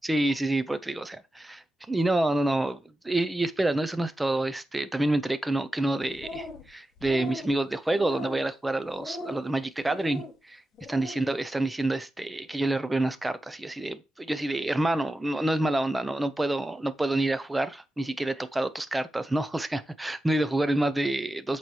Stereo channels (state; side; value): normal; both; correlation 0.92